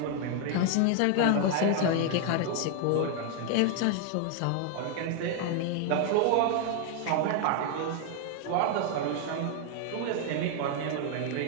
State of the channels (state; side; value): different; both; correlation 0.00